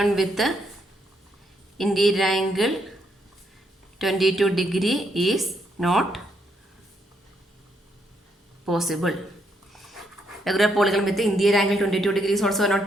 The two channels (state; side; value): normal; both; correlation 0.76